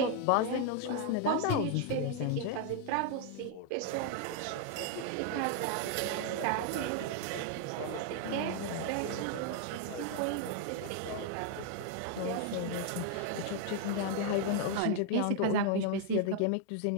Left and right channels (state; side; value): different; both; correlation 0.00